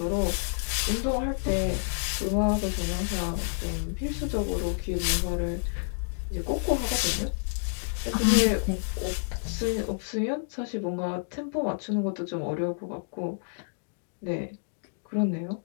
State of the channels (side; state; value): right; silent; digital silence